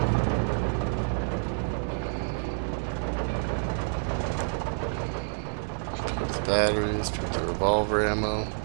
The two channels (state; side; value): silent; left; 58 dB below the other